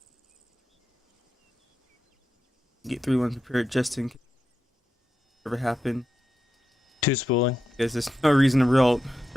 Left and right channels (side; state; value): both; normal; correlation 0.88